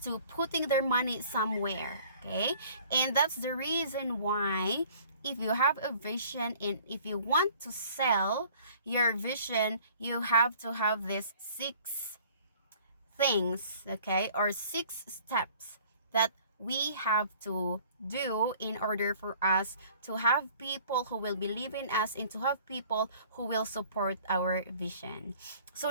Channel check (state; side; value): inverted; both; correlation -0.52